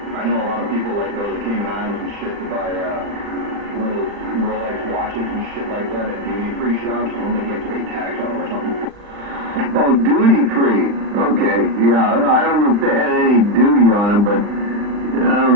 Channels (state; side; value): late; left; 39 ms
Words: I know a lot of people like go to the Cayman Islands and shit to buy one of those Rolex watches and shit like that at duty free shops. I don't think you have to pay tax on them or something. Oh, duty free. Okay, yeah. I don't know if they had any duty on them, but I